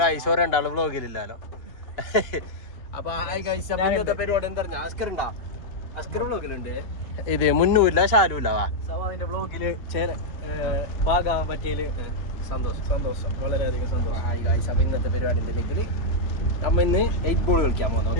രണ്ടാള് വ്ലോഗിലില്ലാലോ. അപ്പൊ ഇന്നത്തെ പരിപാടി എന്താ പറഞ്ഞ അസ്കർ വ്ലോഗിലുണ്ട്. ഇത് മുന്നൂല്ല ഷാലുല്ല വ്ലോഗില് ഭാഗമാകാൻ പറ്റിയതില് സന്തോഷം വളരെയധികം സന്തോഷം. അപ്പൊ ഇന്നത്തെ പരിപാടി ഉണ്ടെങ്കിൽ നമ്മ ഇന്ന് 8 ബോൾ കളിക്കാൻ പോകുന്നത്.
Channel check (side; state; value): right; late; 2.8 ms